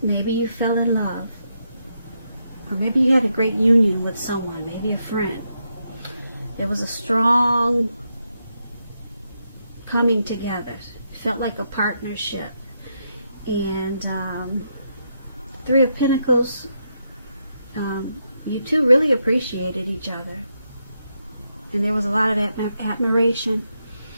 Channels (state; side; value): inverted; both; correlation -0.82